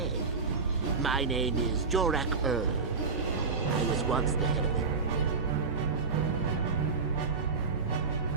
My name is Jorak Earl. I was once the head of it.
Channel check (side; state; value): left; quieter; 4.7 dB